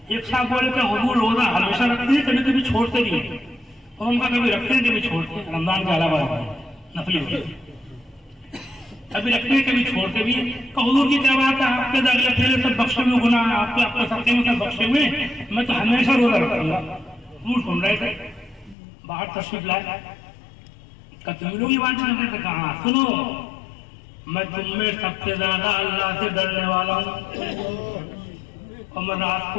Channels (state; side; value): drops out; right; at 18.8 s